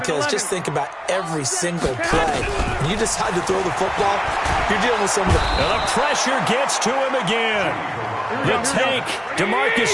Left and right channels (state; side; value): identical; both; correlation 1.00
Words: just think about every single play. When you decide to throw the football, you're dealing with some of the... And the pressure gets to him again. The tank,